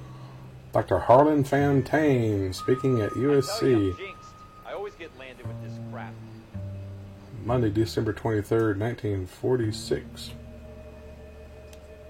Dr. Harlan Fontaine speaking at I tell you, I'm USC. jinxed. I always get landed with this crap. Monday, December 23rd, 1946.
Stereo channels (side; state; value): both; identical; correlation 1.00